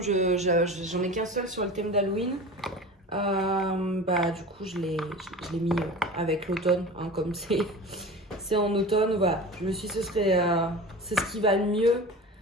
j'en ai qu'un seul sur le thème d'Halloween, bah du coup, je l'ai mis avec l'automne. Hein, comme c'est en automne, voilà. Je me suis dit, c'est ce qui va le mieux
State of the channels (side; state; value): both; normal; correlation 0.34